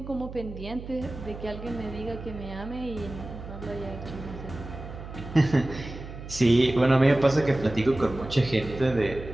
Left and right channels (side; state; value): right; noise; hum, 12 dB below the sound